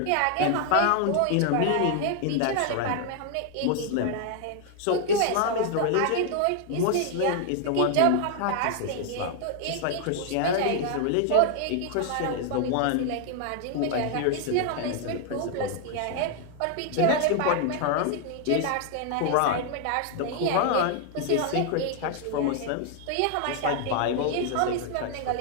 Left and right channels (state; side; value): different; both; correlation 0.00